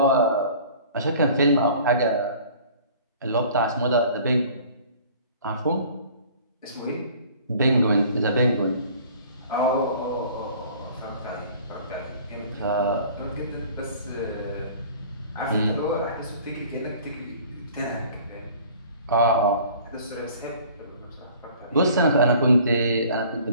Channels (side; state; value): both; inverted; correlation -0.49